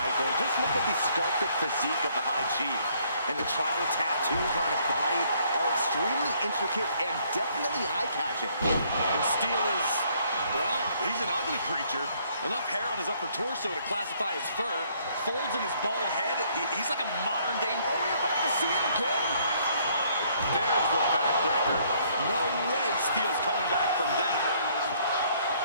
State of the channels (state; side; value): inverted; both; correlation -0.65